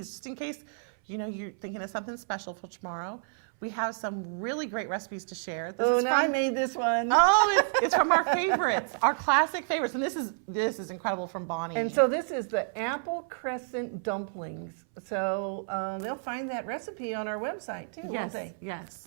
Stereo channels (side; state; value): left; silent; 58 dB below the other